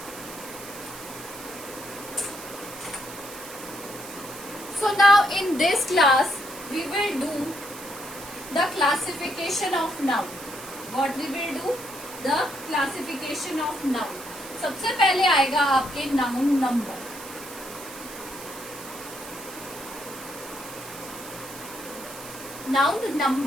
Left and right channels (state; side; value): noise; right; hiss, 13 dB below the sound